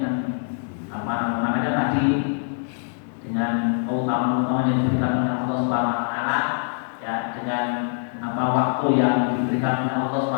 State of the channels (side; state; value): right; silent; 62 dB below the other